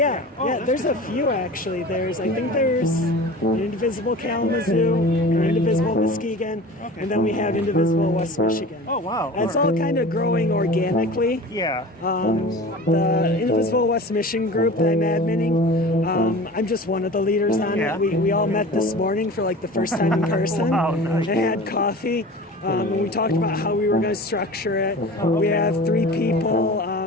that's there's a few actually. I think there's an Indivisible Kalamazoo, an Indivisible Muskegon, and then we have Indivisible West Michigan. Oh, wow. And it's all kind of growing organically. Yeah. The Indivisible West Michigan group that I'm adminning, I'm just one of the leaders on Yeah. it. We all met this morning for like the first time in person. Wow, nice. And had coffee. And we talked about how we were going to structure it. We have 3 people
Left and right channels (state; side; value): normal; both; correlation 0.37